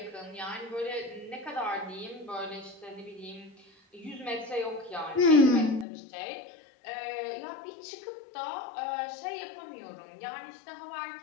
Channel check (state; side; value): drops out; right; at 5.9 s